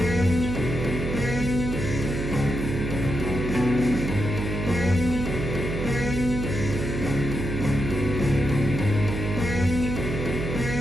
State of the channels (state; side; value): noise; right; hum, 4 dB below the sound